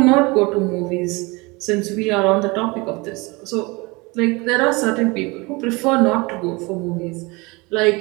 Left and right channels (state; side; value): quieter; left; 25.6 dB